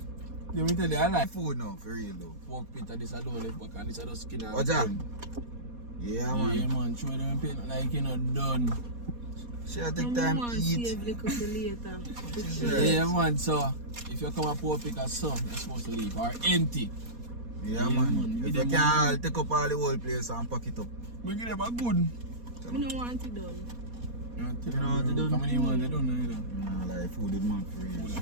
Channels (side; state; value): left; late; 4.2 ms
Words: Let me tell you, I like Food now, for real though. pork pit and this I don't left back and this I just skin and What's that? bone. Yeah man. Yeah man, show them pain like you know done. Should take time to eat. Save little for later. Right. Yeah man, so if you come a pork pick as some, you're supposed to leave or empty. Yeah, Yeah, man. man. If Give you them can one. take up all the whole place and pack it up. We give them a good. We don't want it done. You know what they done? How many want they don't know either. Nah, like food is man for real.